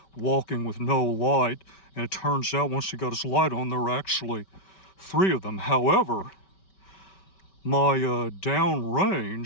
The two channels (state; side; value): late; right; 5.2 ms